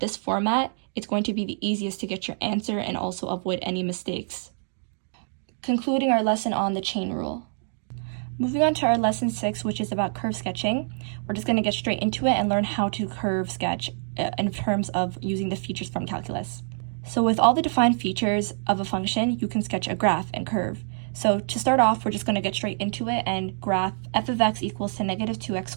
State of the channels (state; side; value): silent; left; digital silence